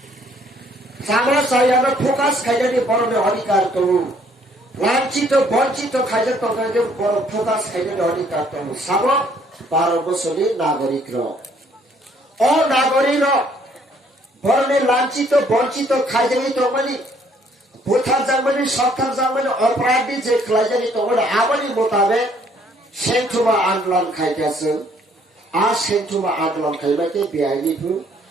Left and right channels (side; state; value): both; normal; correlation 0.64